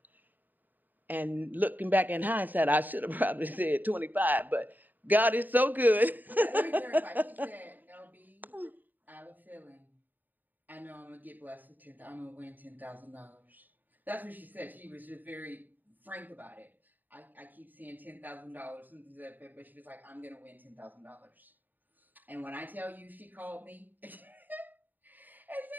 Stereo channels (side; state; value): left; late; 0.087 ms